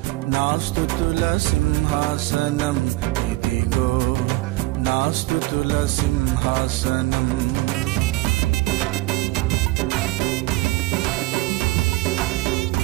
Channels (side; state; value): left; quieter; 20.0 dB